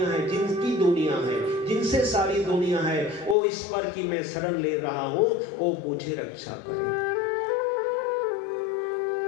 है, जिनकी दुनिया है, जिनसे सारी दुनिया है, वो ईश्वर की मैं शरण ले रहा हूं, वो मुझे रक्षा करे।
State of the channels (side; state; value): right; drops out; at 3.4 s